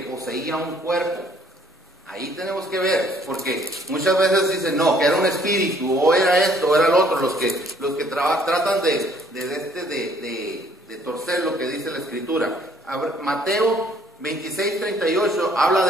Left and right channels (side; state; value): both; normal; correlation 0.61